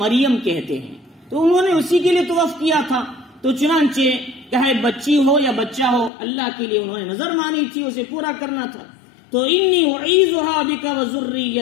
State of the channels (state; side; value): drops out; right; at 6.1 s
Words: کہتے ہیں. تو انہوں نے اسی کے لیے تو وقف کیا تھا. تو چنانچہ کیا ہے بچی ہو یا بچہ ہو، اللہ کے لیے انہوں نے نظر مانی تھی، اسے پورا کرنا تھا. تو انی اعیذها بک